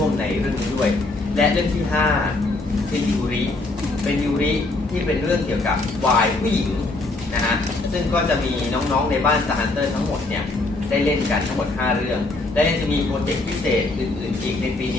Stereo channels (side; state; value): right; quieter; 3.1 dB